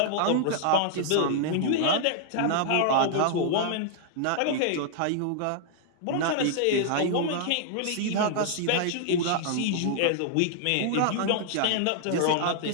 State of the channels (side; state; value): both; different; correlation 0.00